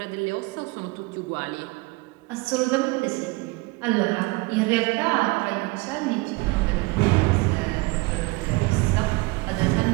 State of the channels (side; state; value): left; quieter; 24.3 dB